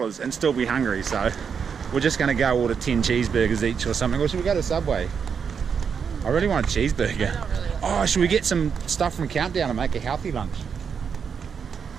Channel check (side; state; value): left; quieter; 6.6 dB